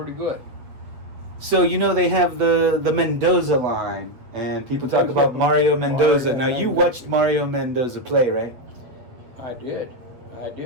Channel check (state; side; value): late; left; 8.1 ms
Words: good. So they have the Mendoza line, and people talk about Mario Mendoza. Now you watched Mario Mendoza play, right? I did.